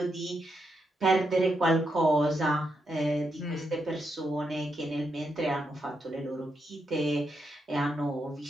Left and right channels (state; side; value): normal; both; correlation 0.82